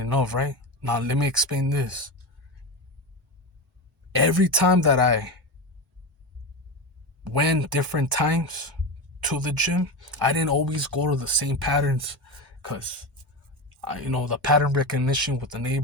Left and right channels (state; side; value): normal; both; correlation 0.20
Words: enough, right? Now, let me explain this. Every time that I went different times to the gym, I didn't always go to the same patterns because, the pattern recognition with the